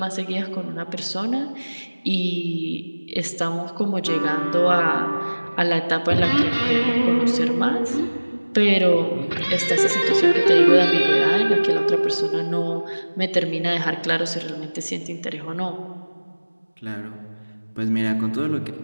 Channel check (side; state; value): both; inverted; correlation -1.00